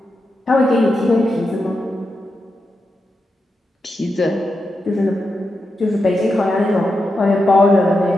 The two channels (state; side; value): normal; both; correlation 0.87